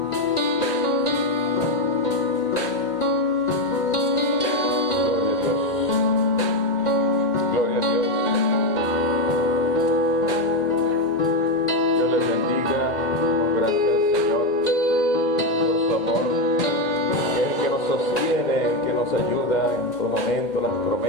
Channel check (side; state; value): right; late; 2.1 ms